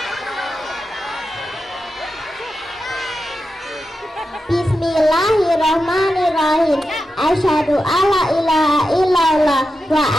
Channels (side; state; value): both; normal; correlation 0.90